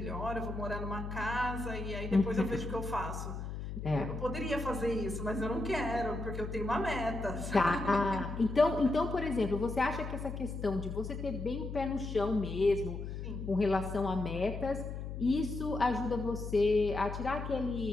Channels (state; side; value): noise; left; hum, 6 dB below the sound